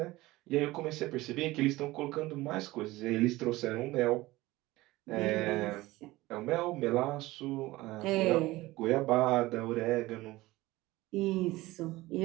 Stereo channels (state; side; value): quieter; left; 18.9 dB